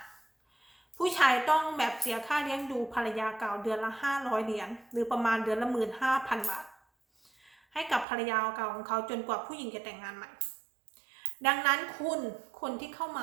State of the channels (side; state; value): left; drops out; at 8.1 s